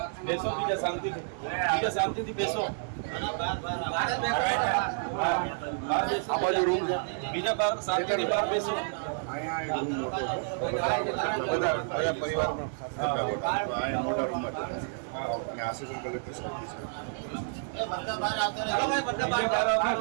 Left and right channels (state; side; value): silent; left; 58 dB below the other